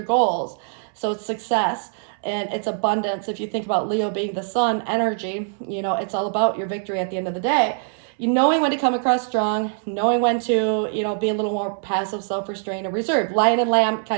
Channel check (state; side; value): silent; left; 61 dB below the other